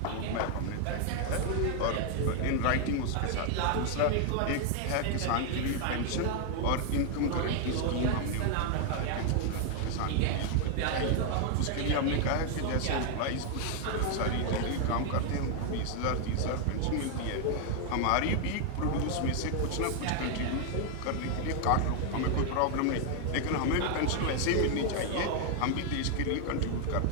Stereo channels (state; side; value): different; both; correlation 0.00